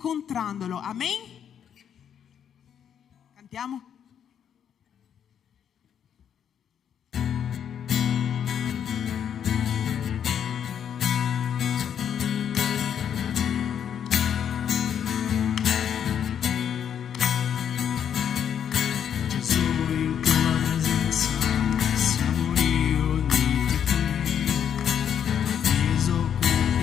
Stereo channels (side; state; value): right; quieter; 8.7 dB